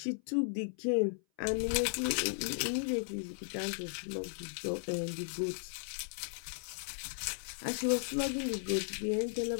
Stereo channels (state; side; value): silent; right; 54 dB below the other